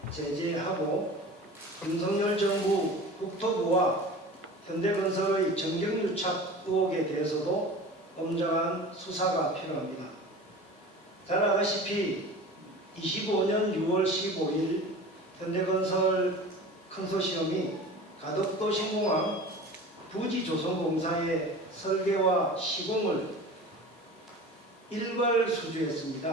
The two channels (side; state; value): both; normal; correlation 0.37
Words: 제재하고 윤석열 정부 국토부와 현대건설의 정경유착 의혹에 대해서도 엄정한 수사가 필요합니다. 잘 아시다시피 25년 6월 15일 현대건설 컨소시엄이 가덕도 신공항 부지조성공사의 설계와 시공을 일괄